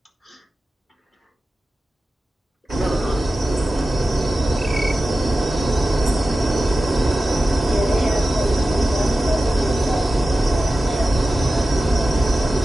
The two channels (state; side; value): normal; both; correlation 0.94